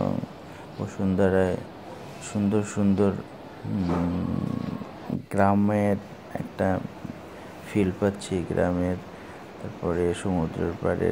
বসুন্ধরায় সুন্দর সুন্দর গ্রামের একটা ফিল পাচ্ছি, তারপরে সমুদ্রের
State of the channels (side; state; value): both; identical; correlation 1.00